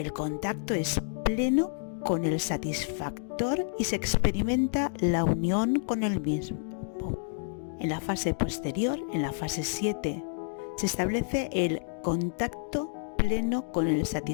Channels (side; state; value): right; silent; digital silence